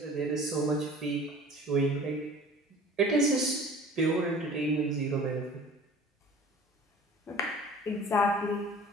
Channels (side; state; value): both; normal; correlation 0.44